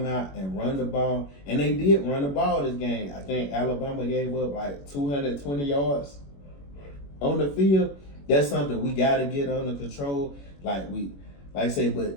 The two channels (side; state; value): right; late; 21 ms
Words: out and run the ball, and they did run the ball this game. I think Alabama gave up like 220 yards on the field. That's something we got to get under control. Like I say,